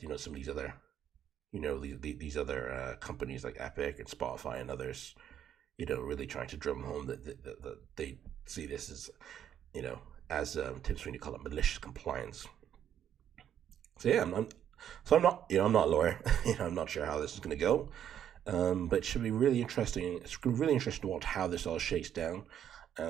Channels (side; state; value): left; quieter; 9.8 dB